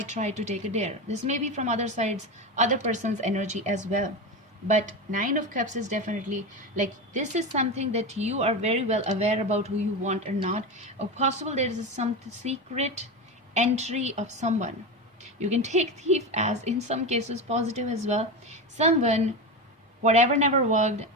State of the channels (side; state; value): both; normal; correlation 0.20